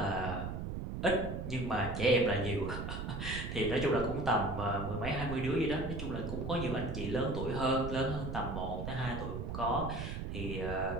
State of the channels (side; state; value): right; noise; rumble, 5 dB below the sound